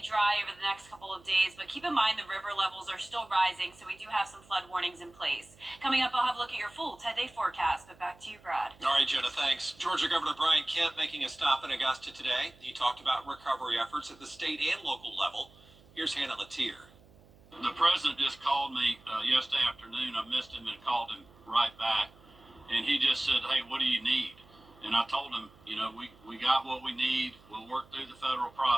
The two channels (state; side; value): noise; right; hum, 26 dB below the sound